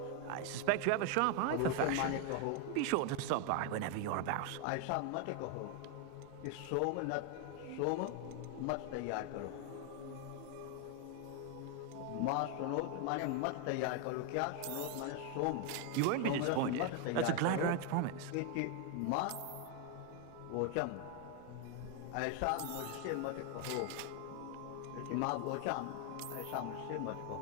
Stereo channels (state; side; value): different; both; correlation 0.01